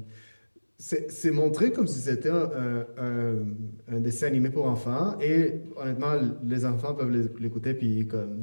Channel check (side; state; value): both; inverted; correlation -1.00